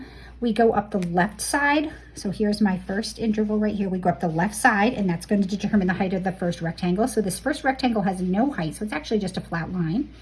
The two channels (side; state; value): both; identical; correlation 1.00